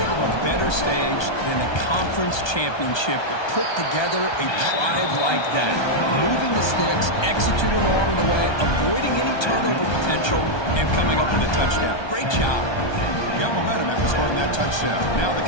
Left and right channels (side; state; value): right; late; 1.2 ms